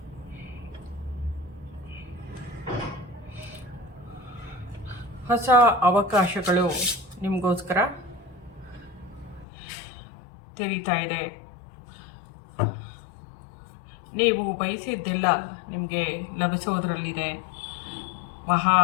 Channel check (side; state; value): right; drops out; at 9.5 s